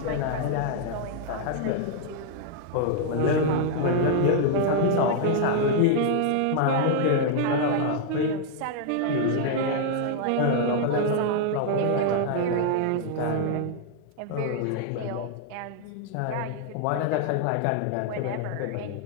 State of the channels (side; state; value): both; different; correlation 0.00